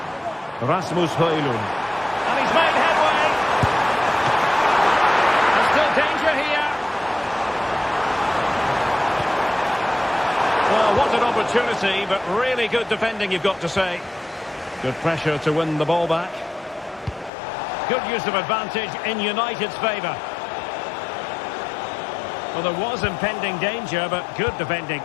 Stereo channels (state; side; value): drops out; right; at 17.3 s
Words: Rasmus Højlund. And he's made headway. There's still danger here. Well, what an opportunity, but really good defending, you've got to say. Good pressure to win the ball back. Good use of advantage in United's favour. Well, there was impending danger, but good defending.